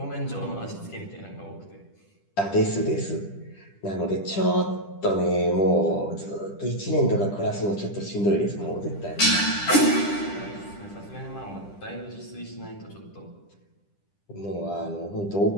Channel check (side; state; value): right; late; 10 ms